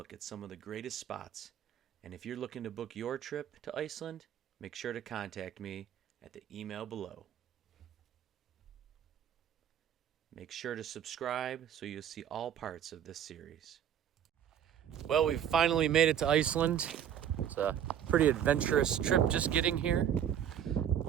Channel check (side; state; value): left; quieter; 9.7 dB